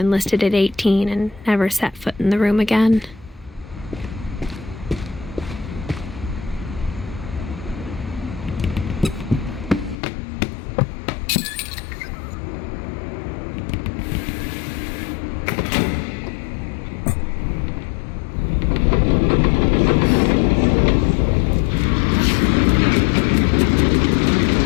at 18 and never set foot in the room again.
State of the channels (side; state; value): right; drops out; at 10.0 s